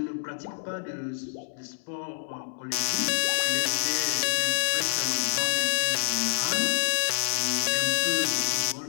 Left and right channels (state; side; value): silent; right; 60 dB below the other